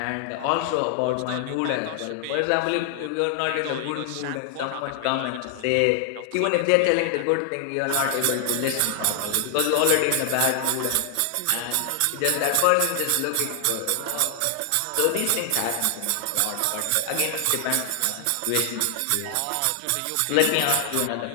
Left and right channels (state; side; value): different; both; correlation 0.00